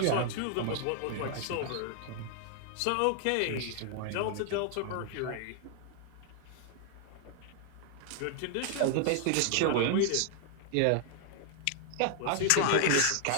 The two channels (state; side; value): different; both; correlation 0.00